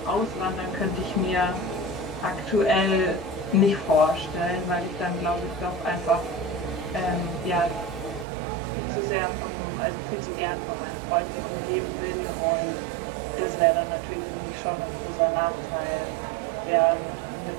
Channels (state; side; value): drops out; left; at 8.2 s